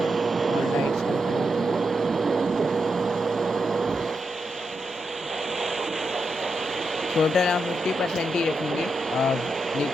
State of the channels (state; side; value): normal; both; correlation 0.85